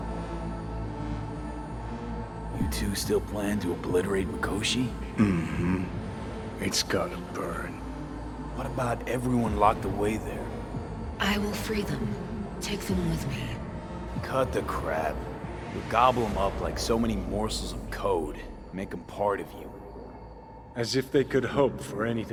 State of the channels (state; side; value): identical; both; correlation 1.00